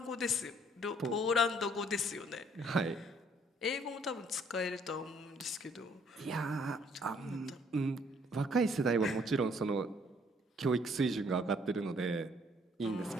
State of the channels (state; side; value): normal; both; correlation 0.63